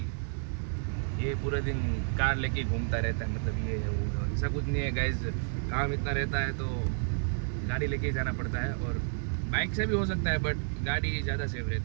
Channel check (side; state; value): left; silent; digital silence